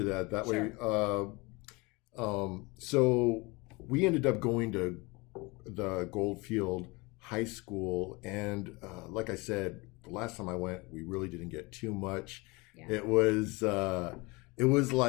that. That Sure. way. So we ended up going to the Goldfield High School, and like I said, the last time I went, we really didn't get too much. Yeah. It was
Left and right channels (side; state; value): right; quieter; 25.5 dB